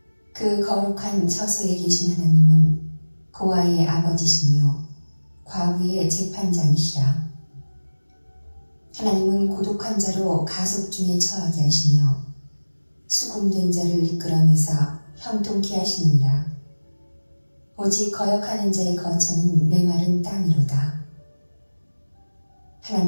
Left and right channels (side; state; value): both; inverted; correlation -1.00